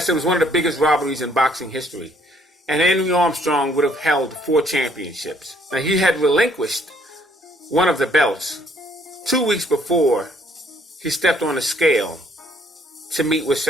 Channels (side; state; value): both; normal; correlation 0.64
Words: it was one of the biggest robberies in boxing history. And Henry Armstrong would have held 4 championships. Now, he had relinquished one of the belts 2 weeks before he stepped on the scale to meet with